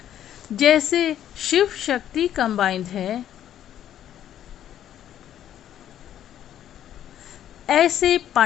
जैसे शिव शक्ति कंबाइंड है, ऐसे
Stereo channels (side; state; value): right; quieter; 10.9 dB